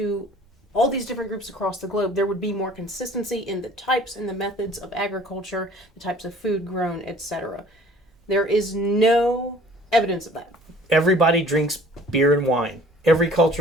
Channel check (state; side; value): normal; both; correlation 0.52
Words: all these different groups across the globe, there would be more consistency in the types and the methods of agriculture, the types of food grown, etc. There is no evidence of that. Everybody drinks beer and wine. Every